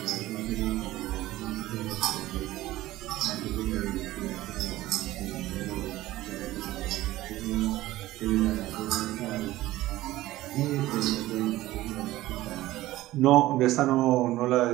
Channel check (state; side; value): quieter; left; 16.5 dB